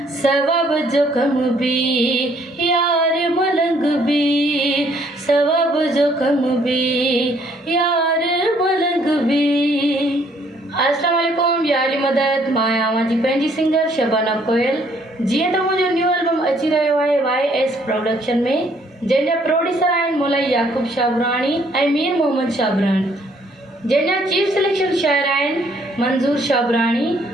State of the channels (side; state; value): both; normal; correlation 0.65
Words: सवाब जो कम बि यार मलंग बि, सवाब जो कम बि यार मलंग बि। अस्सलाम वालेकुम, यारी मदद मां आहियां जी पंहिंजी सिंगर शबाना कोयल। जीअं त मुंहिंजो न्यू एल्बम अची रहियो आहे YS प्रोडक्शन में, जंहिंजा प्रोड्यूसर आहिनि मौलाई याकूब शाबराणी ऐं मीर मोहम्मद शाबराणी, जंहिंजा चीफ सिलेक्शन शायर आहिनि मंज़ूर शाबराणी,